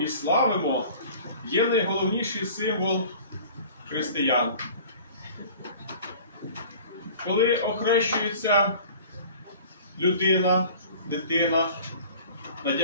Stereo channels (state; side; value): inverted; both; correlation -0.45